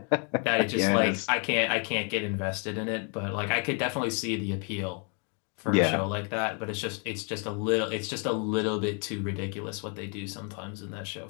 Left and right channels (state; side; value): quieter; right; 37.7 dB